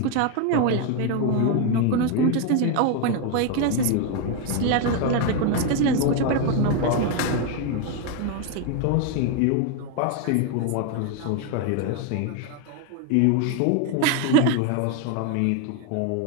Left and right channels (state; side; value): different; both; correlation 0.01